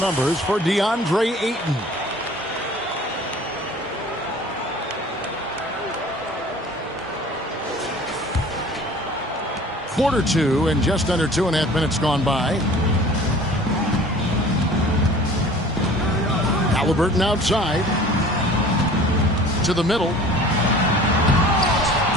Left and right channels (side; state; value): both; normal; correlation 0.46